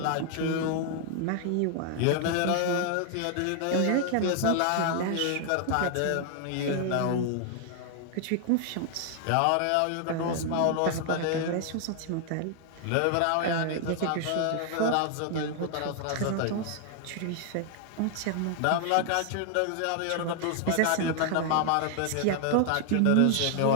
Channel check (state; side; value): different; both; correlation 0.00